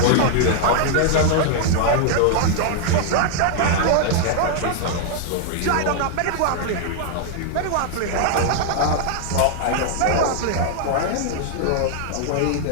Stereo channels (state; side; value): different; both; correlation 0.00